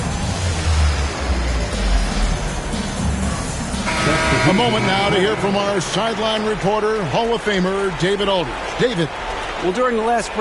A moment now to hear from our sideline reporter, Hall of Famer David Aldridge. David. Well, during the last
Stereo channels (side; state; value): both; identical; correlation 1.00